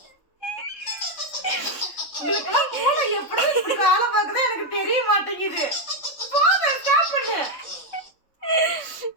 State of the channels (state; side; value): late; right; 3.7 ms